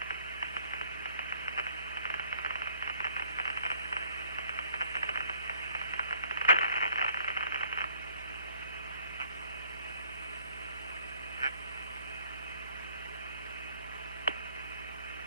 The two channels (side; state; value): both; inverted; correlation -0.61